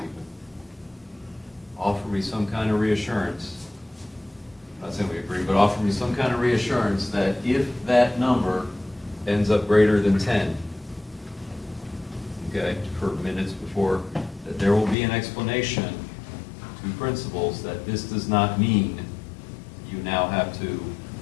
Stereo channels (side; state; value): right; drops out; at 15.0 s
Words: Offer me some kind of reassurance, not saying we agree, but offer me some kind of reassurance that if that number ends up greater than 10, okay, for minutes before, that there will be an explanation to principals that this does not mean you now have to